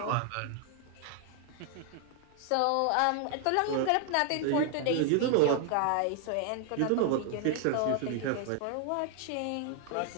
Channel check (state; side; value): different; both; correlation 0.00